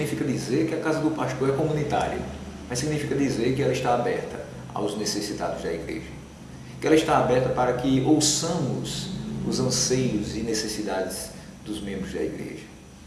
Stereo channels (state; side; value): identical; both; correlation 1.00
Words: dizer que a casa do pastor é comunitária, mas significa dizer que ela está aberta aos necessitados da igreja, que ela está aberta para que ouçamos os anseios e necessidades dos membros da igreja,